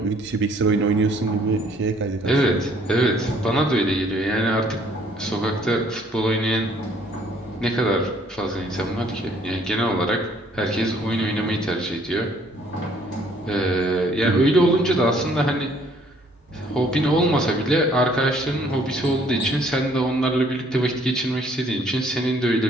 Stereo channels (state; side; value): normal; both; correlation 0.61